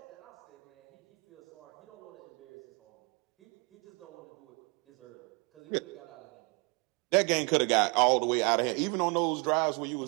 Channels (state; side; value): quieter; left; 31.5 dB